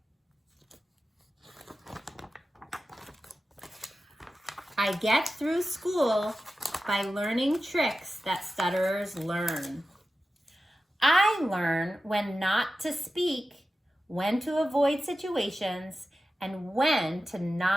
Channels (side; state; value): both; normal; correlation 0.93